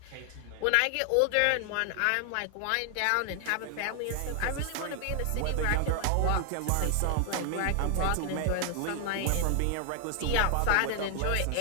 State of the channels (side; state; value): both; different; correlation 0.00